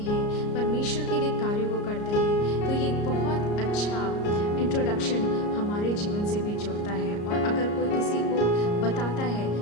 परमेश्वर के लिए कार्यों को करते हैं, तो ये एक बहुत अच्छा इंट्रोडक्शन हमारे जीवन से भी जुड़ता है। और अगर कोई किसी को बताता है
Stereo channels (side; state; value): right; late; 34 ms